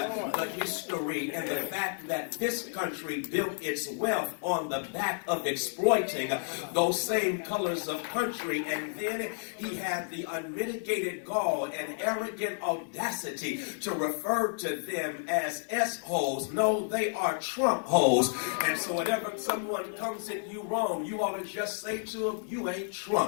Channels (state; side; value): silent; right; 57 dB below the other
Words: history and the fact that this country built its wealth on the back of exploiting those same colors of country. And then he had the unmitigated gall and arrogant audacity to refer to them as S-holes. No, they are Trump holes. And so whenever someone comes at you wrong, you ought to just say to them, you ain't